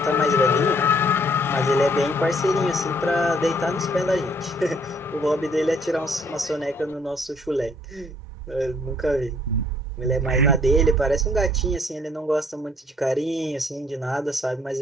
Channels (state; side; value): normal; both; correlation 0.63